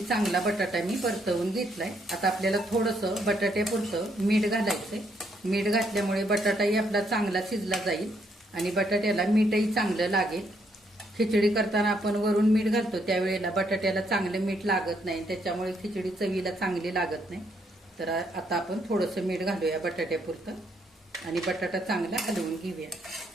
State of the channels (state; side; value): normal; both; correlation 0.73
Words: चांगला बटाटा मी परतवून घेतलाय. आता आपल्याला थोडंसं बटाट्यापुरतं मीठ घालायचंय. मीठ घातल्यामुळे बटाटाही आपला चांगला शिजला जाईल आणि बटाट्याला मीठही चांगलं लागेल. खिचडी करताना आपण वरून मीठ घालतो त्यावेळेला बटाट्याला चांगलं मीठ लागत नाही, त्याच्यामुळे खिचडी चवीला चांगली लागत नाही. तर आता आपण थोडंसं मीठ घालूया बटाट्यापुरतं आणि बटाटा चांगला हलवून घेऊया.